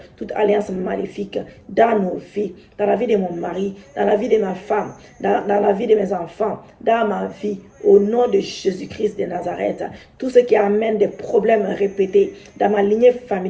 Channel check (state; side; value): identical; both; correlation 1.00